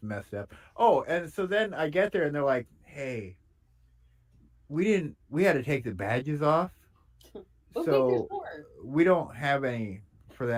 messed up. Oh, and so then I get there and they're like, hey, we had to take the badges off. So we don't have any for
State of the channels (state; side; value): identical; both; correlation 1.00